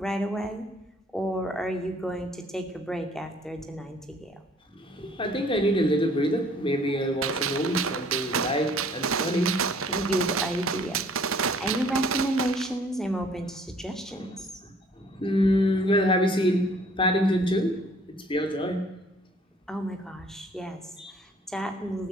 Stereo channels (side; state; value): both; normal; correlation 0.57